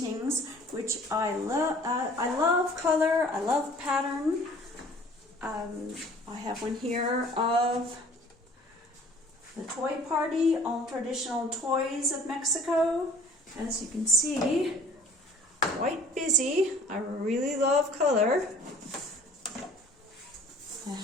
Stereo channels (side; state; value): both; normal; correlation 0.52